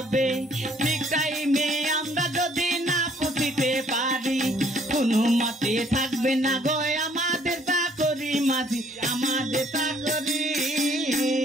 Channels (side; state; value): both; normal; correlation 0.62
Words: ঠিক টাইমে আমরা যদি না পৌঁছিতে পারি কোনো মতে থাকবে না গো আমাদের। আমাদের চাকরি।